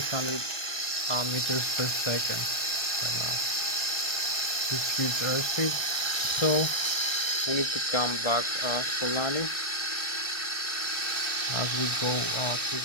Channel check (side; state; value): right; late; 1.3 ms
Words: meters per second right now. This huge airspeed, so we need to come back for landing as we go to